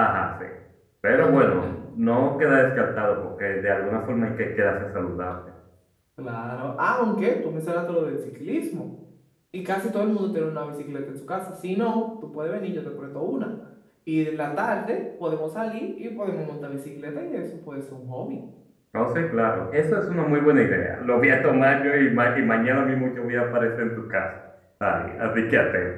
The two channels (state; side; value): identical; both; correlation 1.00